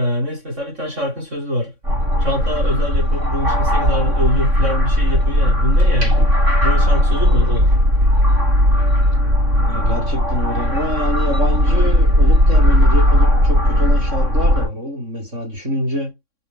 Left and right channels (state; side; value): late; left; 3.6 ms